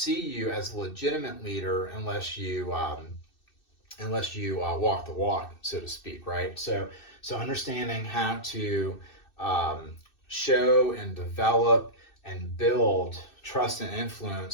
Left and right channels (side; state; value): right; late; 2.6 ms